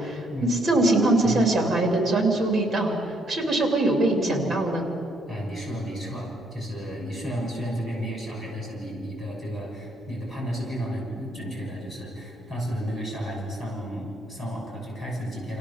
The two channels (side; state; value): both; normal; correlation 0.69